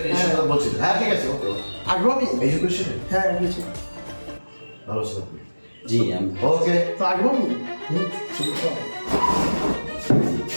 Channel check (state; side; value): inverted; both; correlation -1.00